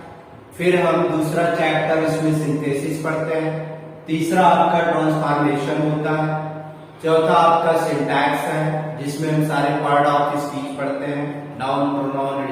फिर हम दूसरा चैप्टर उसमें सिंथेसिस पढ़ते हैं, तीसरा आपका ट्रांसफॉर्मेशन होता है, चौथा आपका सिंटैक्स है जिसमें हम सारे पार्ट ऑफ स्पीच पढ़ते हैं, noun, pronoun,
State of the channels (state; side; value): identical; both; correlation 1.00